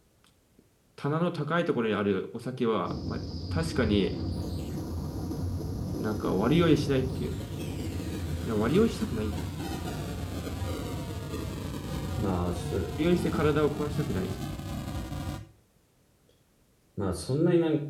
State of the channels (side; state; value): both; identical; correlation 1.00